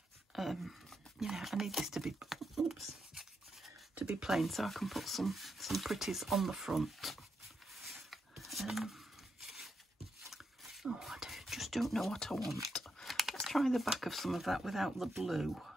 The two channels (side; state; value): both; normal; correlation 0.83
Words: you know, I need this to be, oops, to be plain so I can put some pretties on the front. Oh, I just don't know what I want. Let's try the back of some of that without the blue.